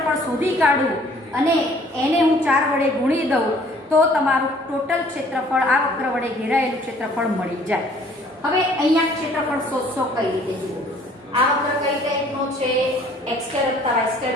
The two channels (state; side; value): normal; both; correlation 0.56